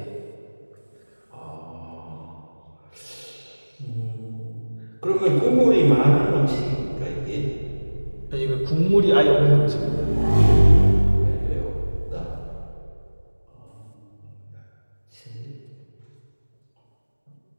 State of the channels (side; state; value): both; inverted; correlation -1.00